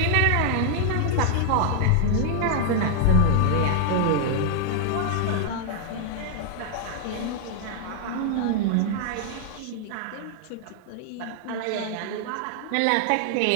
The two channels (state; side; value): different; both; correlation 0.00